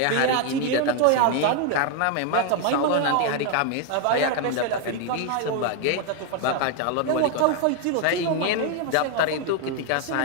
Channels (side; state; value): both; different; correlation 0.01